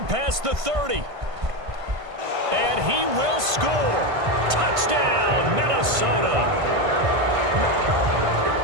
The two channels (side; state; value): left; late; 1.5 ms